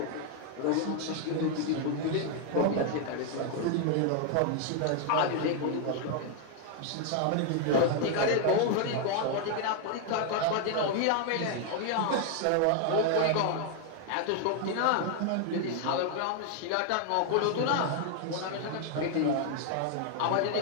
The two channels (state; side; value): different; both; correlation 0.00